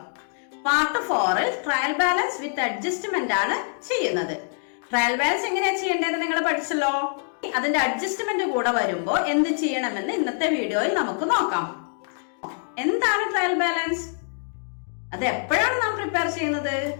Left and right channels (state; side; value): silent; right; digital silence